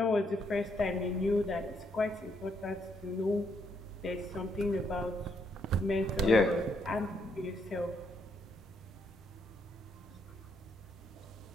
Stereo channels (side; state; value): both; normal; correlation 0.74